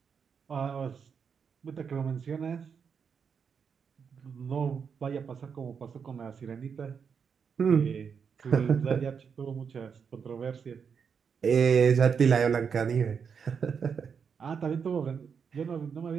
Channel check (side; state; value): left; quieter; 6.5 dB